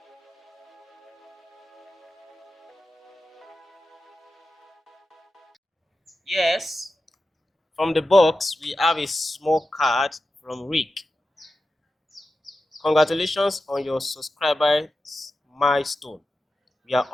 yes, from the box we have a small card from Rick. Congratulations on your subscribers milestone. We are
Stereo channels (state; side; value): normal; both; correlation 0.92